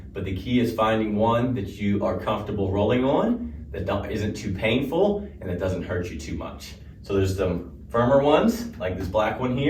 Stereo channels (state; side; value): identical; both; correlation 1.00